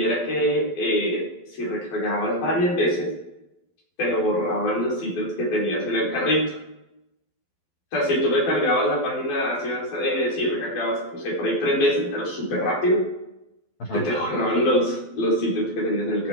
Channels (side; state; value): right; late; 12 ms